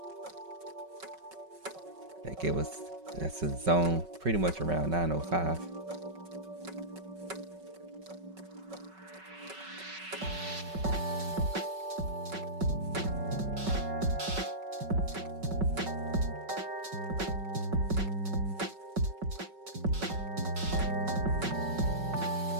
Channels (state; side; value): late; left; 5.3 ms